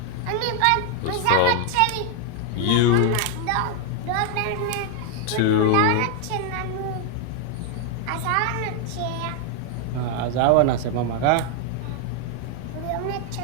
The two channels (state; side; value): different; both; correlation 0.00